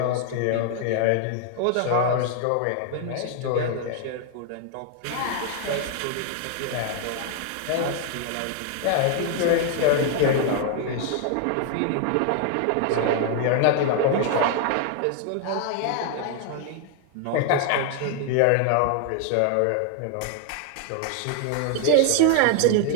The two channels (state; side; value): different; both; correlation 0.00